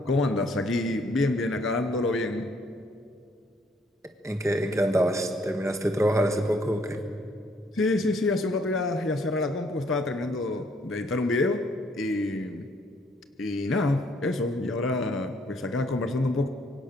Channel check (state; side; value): normal; both; correlation 0.66